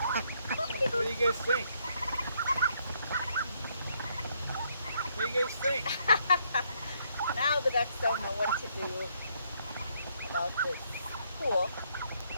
What do you guys think? What do you guys think? Now the ducks don't know what to do about this pool.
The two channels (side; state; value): both; inverted; correlation -0.71